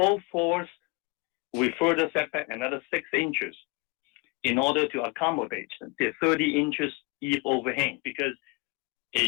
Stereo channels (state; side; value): quieter; right; 28.1 dB